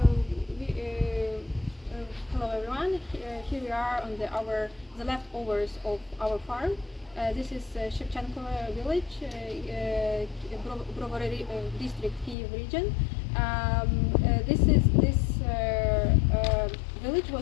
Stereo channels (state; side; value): drops out; right; at 12.4 s